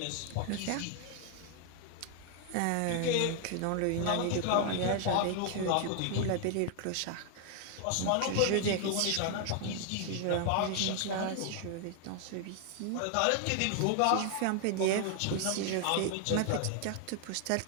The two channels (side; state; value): both; different; correlation 0.00